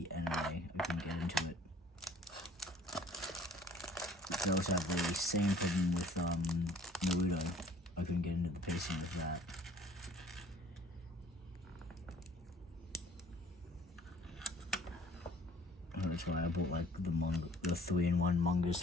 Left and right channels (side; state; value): both; normal; correlation 0.54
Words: anime. I couldn't get into it. I also have the same problem with Naruto. I couldn't get into the pacing of that. That's why I bought the 3-in-1 mangas